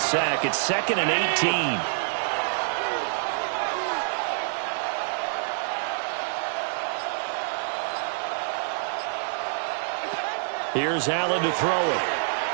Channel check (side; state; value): left; silent; 60 dB below the other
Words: It's 2nd and 18. Here's Allen to throw it.